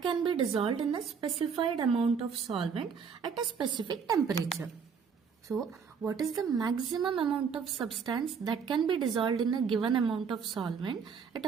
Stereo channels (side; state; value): left; quieter; 6.3 dB